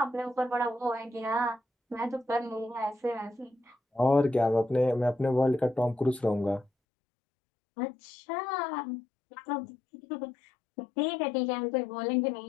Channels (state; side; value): drops out; right; at 6.7 s